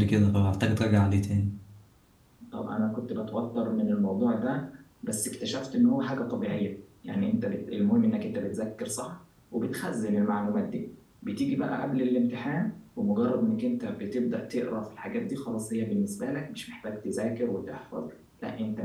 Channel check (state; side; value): identical; both; correlation 1.00